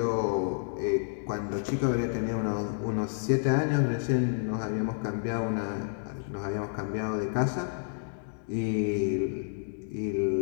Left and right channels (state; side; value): silent; right; digital silence